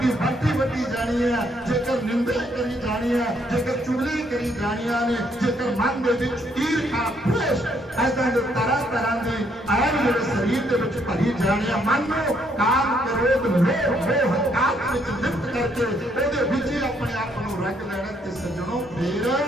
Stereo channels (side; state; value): both; normal; correlation 0.70